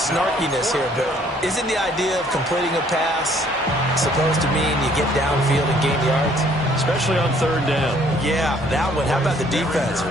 here, but isn't the idea of completing a pass supposed to mean you get downfield and gain yards? Especially on third down. Yeah, that one. How about the defense?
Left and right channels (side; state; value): both; normal; correlation 0.61